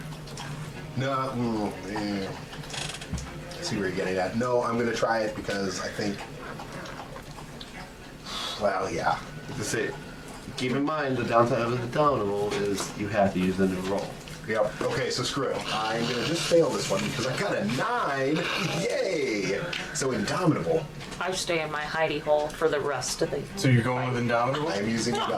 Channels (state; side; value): identical; both; correlation 1.00